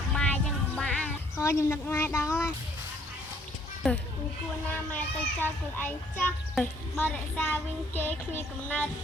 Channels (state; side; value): normal; both; correlation 0.63